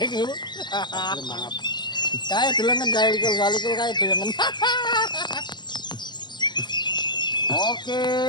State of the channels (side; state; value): right; late; 0.21 ms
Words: Mangap. Kae delengen kae likul kae delengen. Oke.